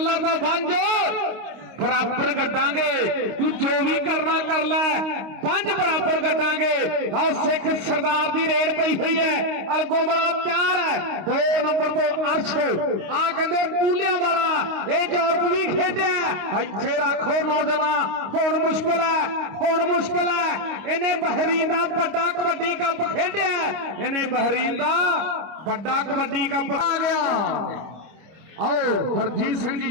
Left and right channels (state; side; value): late; left; 26 ms